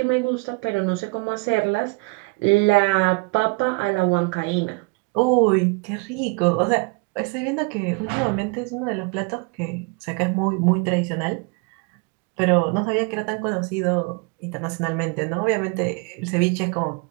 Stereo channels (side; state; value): left; quieter; 30.0 dB